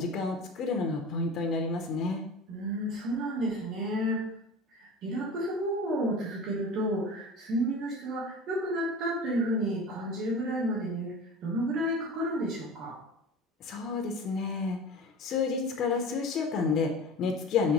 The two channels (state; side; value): normal; both; correlation 0.35